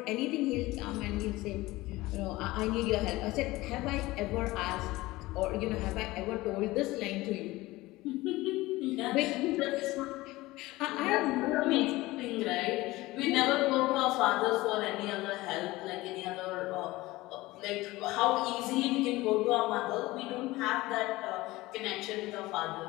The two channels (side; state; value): right; quieter; 19.4 dB